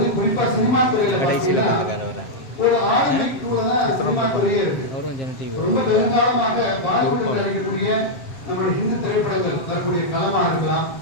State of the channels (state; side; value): late; right; 7.5 ms